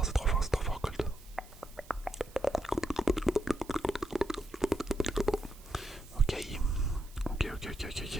c'est trop fort, c'est trop fort, Colt. Ok. Ok.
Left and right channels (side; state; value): right; noise; hiss, 23 dB below the sound